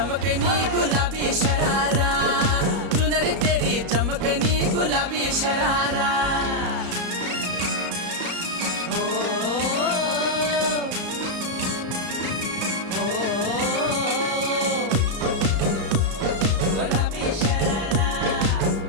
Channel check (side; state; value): left; late; 34 ms